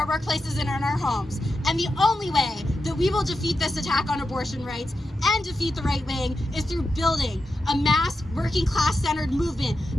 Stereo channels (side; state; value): both; normal; correlation 0.89